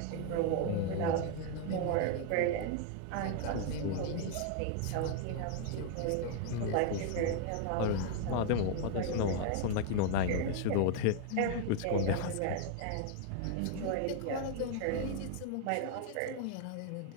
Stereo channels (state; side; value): different; both; correlation 0.00